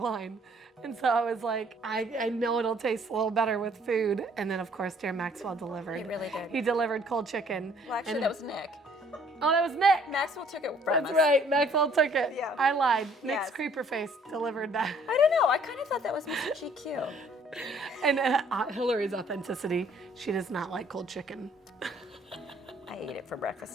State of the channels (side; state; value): both; normal; correlation 0.60